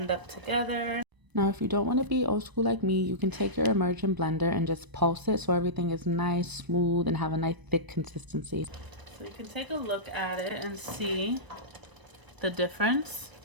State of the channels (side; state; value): left; late; 1.0 ms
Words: up together. Now, if you don't want to be old school like me, you can take your immersion blender and just pulse it so everything is nice, smooth, and have a nice thick consistency. So you can take a look at it and see the difference